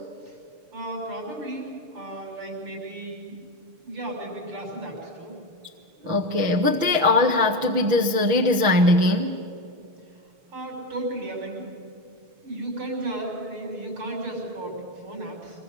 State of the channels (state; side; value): late; left; 6.7 ms